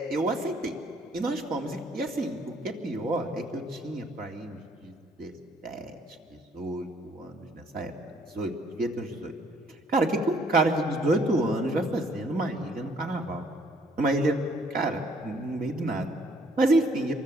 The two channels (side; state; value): both; normal; correlation 0.64